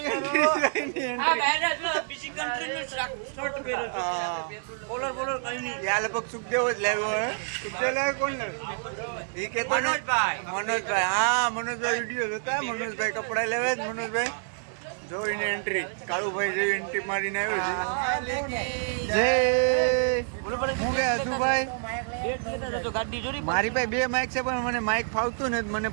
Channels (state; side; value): silent; left; digital silence